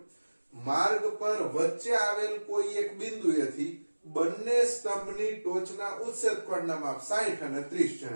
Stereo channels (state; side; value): inverted; both; correlation -1.00